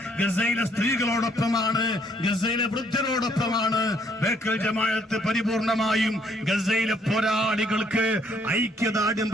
ഗസയിലെ സ്ത്രീകളോടൊപ്പമാണ്, ഗസയിലെ വൃദ്ധരോടൊപ്പമാണ്. ബേക്കൽ ജമാഅത്ത് പരിപൂർണമായും ഗസയിലെ പോരാളികൾക്ക് ഐക്യദാർഢ്യം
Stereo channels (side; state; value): both; normal; correlation 0.67